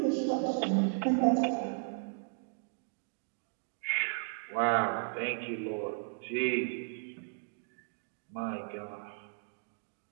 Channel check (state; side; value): silent; left; digital silence